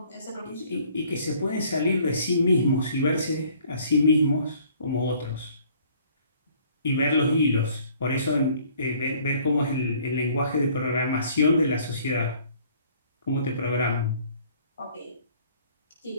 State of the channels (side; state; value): both; inverted; correlation -0.57